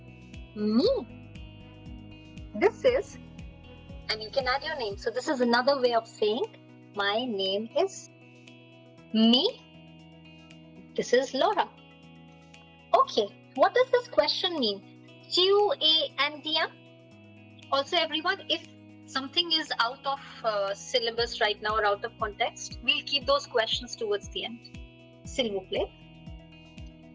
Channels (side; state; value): both; identical; correlation 1.00